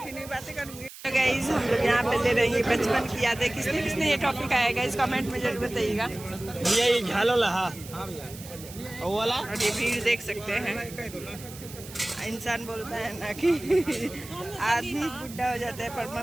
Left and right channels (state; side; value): noise; right; hiss, 16 dB below the sound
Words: बातें करूँगी। गाइस, हम लोग यहाँ पे ले रहे हैं बचपन की यादें। किसने किसने ये टॉपिक आया गाइस, कमेंट में जरूर बताइएगा। भैया ये झालो लहा वाला, और ये भीड़ देख सकते हैं। इंसान बोलता है ना कि आदमी बुढ़ा हो जाता है पर